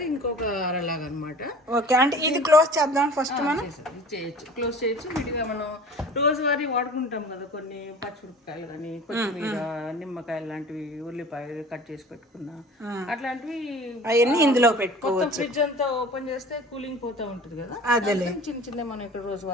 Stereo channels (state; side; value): normal; both; correlation 0.43